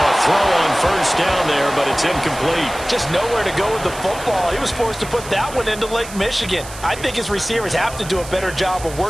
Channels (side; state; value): right; noise; hiss, 14 dB below the sound